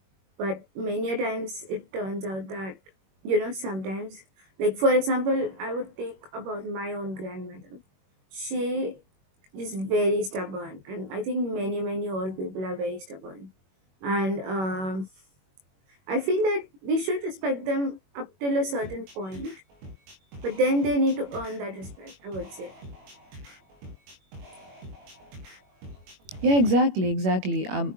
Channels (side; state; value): left; late; 21 ms